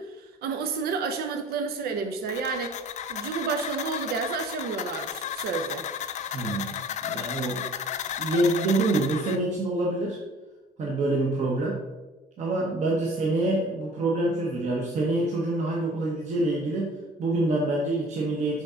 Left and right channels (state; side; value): normal; both; correlation 0.48